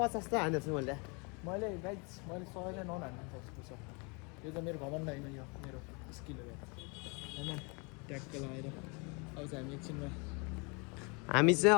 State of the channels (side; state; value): right; quieter; 31.9 dB